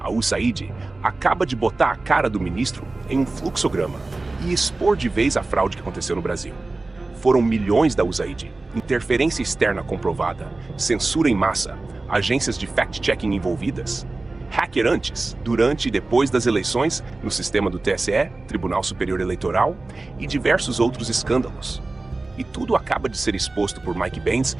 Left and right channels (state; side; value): quieter; left; 3.2 dB